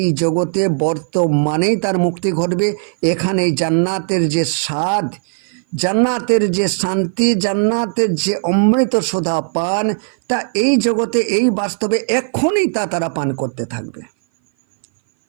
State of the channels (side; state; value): left; silent; 58 dB below the other